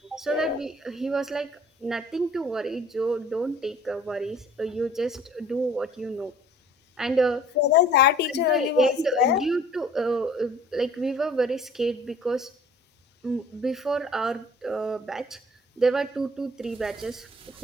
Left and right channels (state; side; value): normal; both; correlation 0.51